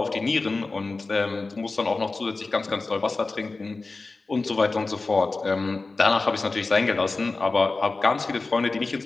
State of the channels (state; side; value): quieter; right; 3.6 dB